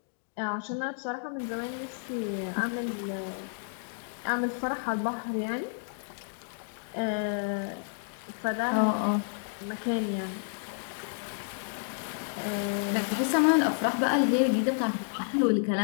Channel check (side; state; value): right; silent; digital silence